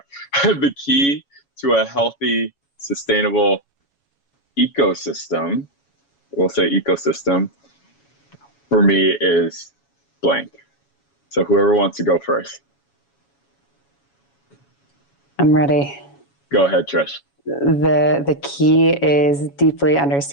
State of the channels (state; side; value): late; right; 7.2 ms